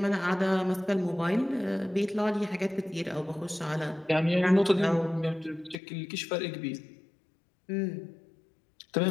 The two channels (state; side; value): drops out; right; at 5.8 s